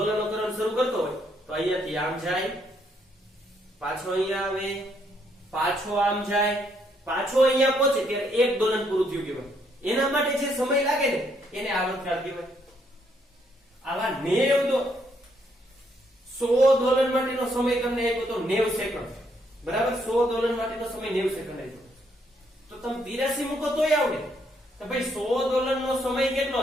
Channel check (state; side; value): normal; both; correlation 0.72